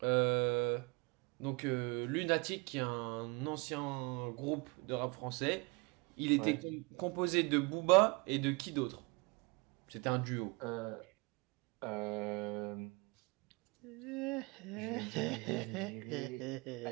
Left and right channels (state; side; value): quieter; left; 28.5 dB